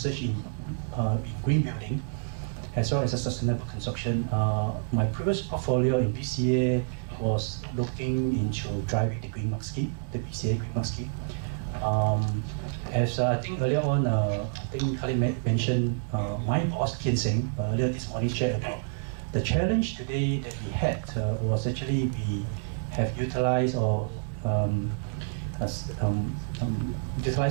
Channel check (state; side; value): silent; left; digital silence